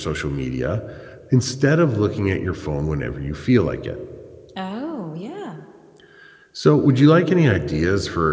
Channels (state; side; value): identical; both; correlation 1.00